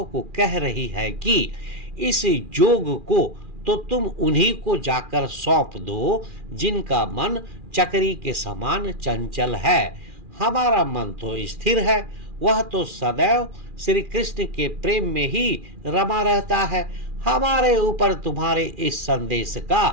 को कह रही है कि इस जोग को तो तुम उन्हीं को जाकर सौंप दो, जिनका मन चक्री के समान चंचल है। हमारा मन तो स्थिर है, वह तो सदैव श्री कृष्ण के प्रेम में ही रमा रहता है। हमारे ऊपर तुम्हारे इस संदेश का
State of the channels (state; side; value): late; left; 2.4 ms